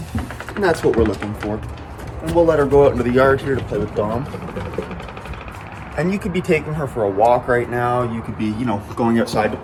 And that's what we're looking for. And we'll let her go out into the yard here to play with Dom. And you could be taking her for a walk right now. You could be, going outside to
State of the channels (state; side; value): identical; both; correlation 1.00